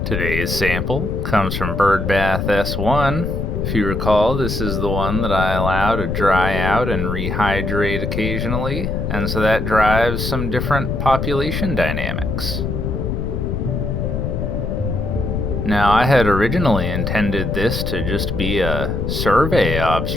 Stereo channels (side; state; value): left; noise; rumble, 2 dB below the sound